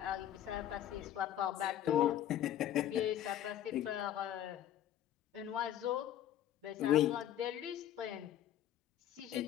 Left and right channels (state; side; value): quieter; right; 11.6 dB